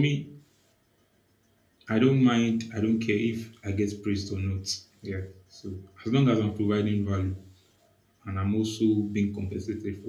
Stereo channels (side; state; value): both; identical; correlation 1.00